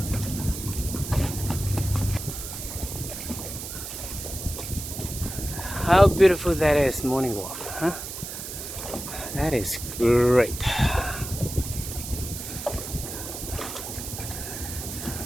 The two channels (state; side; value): noise; right; hiss, 8 dB below the sound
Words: how beautiful that is, morning walk, huh? That is great.